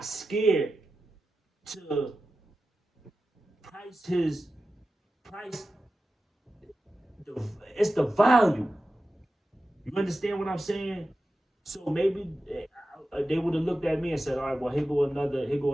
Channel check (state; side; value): normal; both; correlation 0.93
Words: scared to price his price the it's the value. You understand what I'm saying? So maybe they would have looked at me and said, "All right, well, here go another